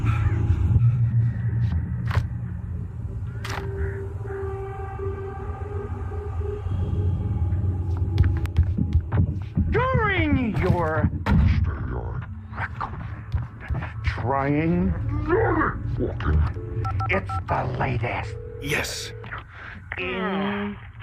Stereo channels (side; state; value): both; identical; correlation 1.00